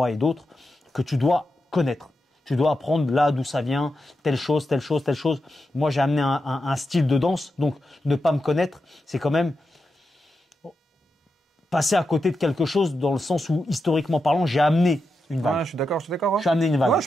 et d'autres, que tu dois connaître. Tu dois apprendre là d'où ça vient, telle chose, telle chose, telle chose. Moi, j'ai amené un style de danse, donc ne pas me connaître, c'est quand même passer à côté de quelque chose dans le sens où, historiquement parlant, j'ai amené une vague. Ouais, je suis d'accord. Ouais. J'ai amené une vague. Ouais, je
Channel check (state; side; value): normal; both; correlation 0.88